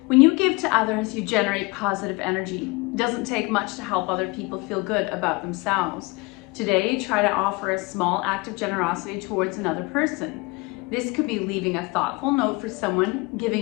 When you give to others, you generate positive energy. It doesn't take much to help other people feel good about themselves. Today, try to offer a small act of generosity towards another person. This could be leaving a thoughtful note for someone,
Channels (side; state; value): right; quieter; 25.6 dB